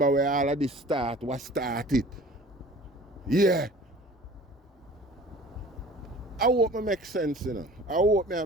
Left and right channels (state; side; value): normal; both; correlation 0.45